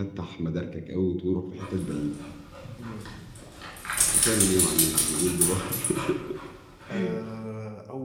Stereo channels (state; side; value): identical; both; correlation 1.00